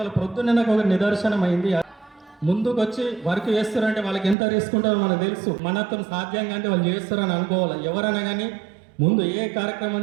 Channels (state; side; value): drops out; left; at 4.4 s